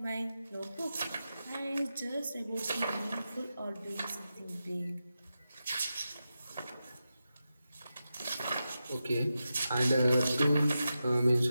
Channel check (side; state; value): both; inverted; correlation -0.90